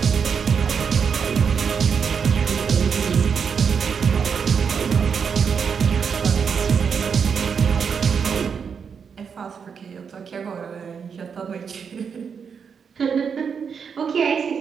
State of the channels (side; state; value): left; quieter; 6.5 dB